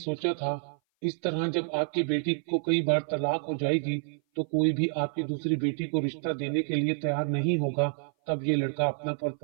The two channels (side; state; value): left; silent; 57 dB below the other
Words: था, इस तरह जब आपकी बेटी को कई बार तलाक हो जाएगी तो कोई भी आपकी दूसरी बेटी को रिश्ता देने के लिए तैयार नहीं होगा। तब ये लड़का अपना